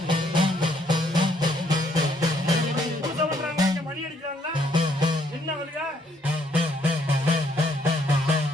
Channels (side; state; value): both; normal; correlation 0.69